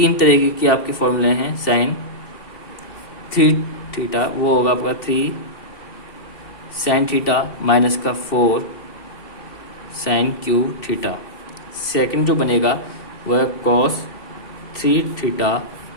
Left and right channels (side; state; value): right; late; 2.7 ms